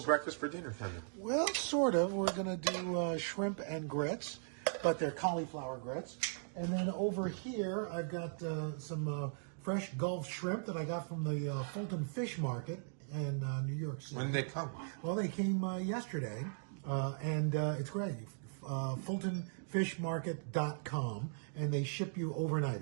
breakfast for dinner kind of. Well, sort of. We're going to do shrimp and grits, but they're cauliflower grits. And then over here, I've got some fresh Gulf shrimp that I got from the Fulton Fish Market in New York City. When did they come? Well, they came yesterday, and it's great. FultonFishMarket.com, and they ship you overnight.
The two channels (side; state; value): left; silent; digital silence